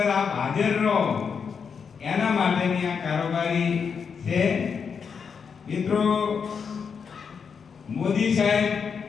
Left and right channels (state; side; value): quieter; right; 6.3 dB